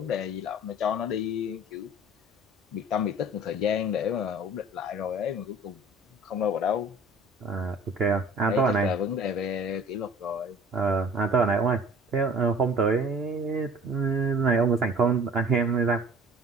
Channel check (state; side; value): normal; both; correlation 0.47